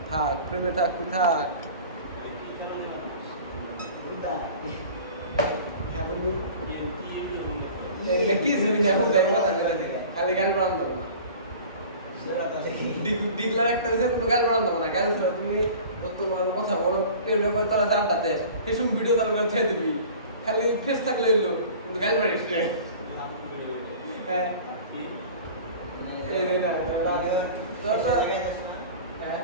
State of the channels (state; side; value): inverted; both; correlation -0.42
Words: থাক প্রেমে থাকবি থাক কি শুনি না কোথায় কথা বলে খালি গান পড়ান দেবো না ডিগলার একটা দেশে কোনো গান পড়ান দেবো না গান শুনে তুমি তোমার কথা বলো টেলিগ্রাম করে তারা জানটাতে এসব ভিডিও তার করে ছেড়ে দিবি খালি ফেস থাকলে এলো কিন্তু গান পড়িস না হ্যাঁ এই না